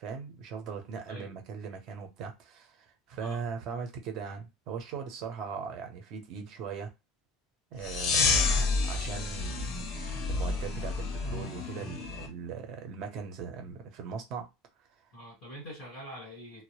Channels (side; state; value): both; normal; correlation 0.45